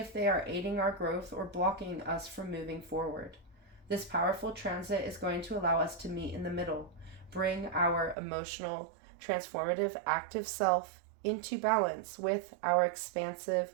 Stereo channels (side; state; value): left; drops out; at 8.2 s